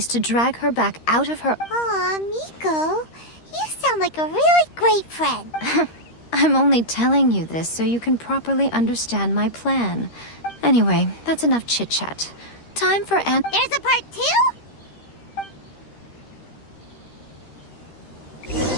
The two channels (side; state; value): right; late; 13 ms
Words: to drag her back out of her... Aw, Miko, you sound like a really great friend. I'm only telling you this so you can properly understand my plan. Anyway, that's enough chit-chat. Time for There's a part 2?